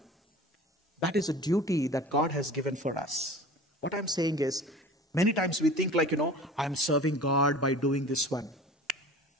That is a duty that God has given for us. What I'm saying is, many times we think like, I'm serving God by doing this one.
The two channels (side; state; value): both; normal; correlation 0.40